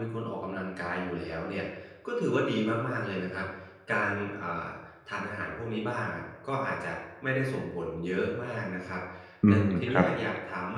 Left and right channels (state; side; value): identical; both; correlation 1.00